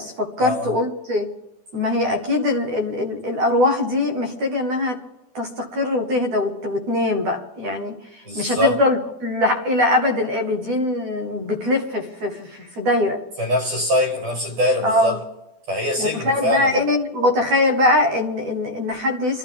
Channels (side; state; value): left; late; 12 ms